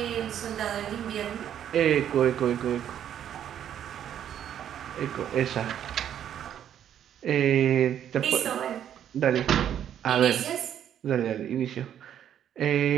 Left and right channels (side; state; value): left; quieter; 10.0 dB